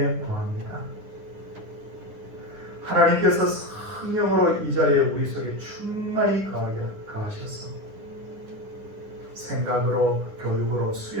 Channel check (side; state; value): left; late; 10 ms